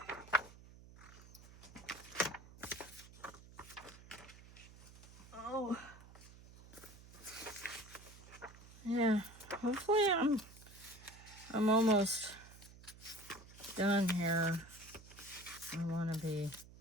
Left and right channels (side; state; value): right; noise; hum, 19 dB below the sound